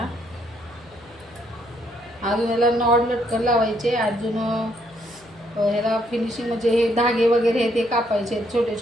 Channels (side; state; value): left; noise; hum, 27 dB below the sound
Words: अजून याला नॉड लटकन लावायचे. अजून ह्याला फिनिशिंग म्हणजे हे धागे वगैरे हे ते कापायचे छोटे